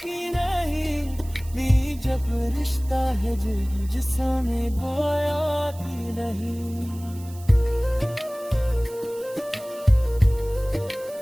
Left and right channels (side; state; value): right; noise; hiss, 21 dB below the sound